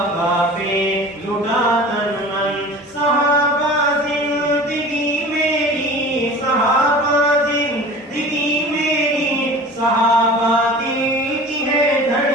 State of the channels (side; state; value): both; normal; correlation 0.39